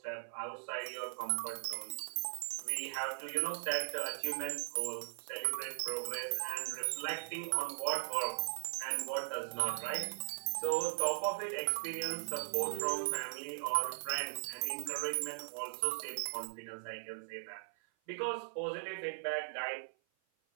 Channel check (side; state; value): left; silent; 52 dB below the other